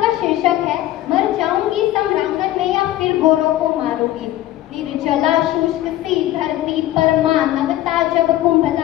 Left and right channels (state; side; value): quieter; right; 14.6 dB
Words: का शीर्षक है मर जाऊंगी सम्रांगण में या फिर गोरों को मारूंगी। निर्जला शुष्क सी धरती पर मानवता जब